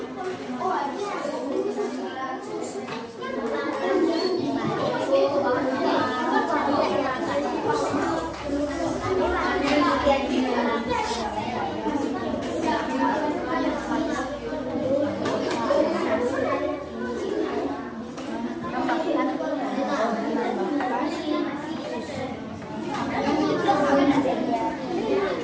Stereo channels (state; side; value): identical; both; correlation 1.00